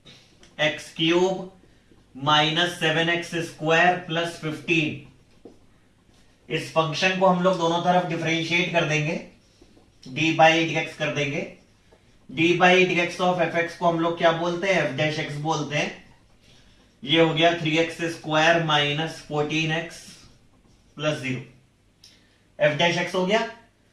x cube minus 7x square plus 15। इस फंक्शन को हम लोग दोनों तरफ डिफरेंशिएट कर देंगे, डी बाई डी एक्स कर देंगे। D by D x of F x को हम लोग क्या बोलते हैं, एफ डैश एक्स बोलते हैं। ये हो गया 3x square minus 14x plus 0। F dash x हो गया।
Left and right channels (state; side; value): identical; both; correlation 1.00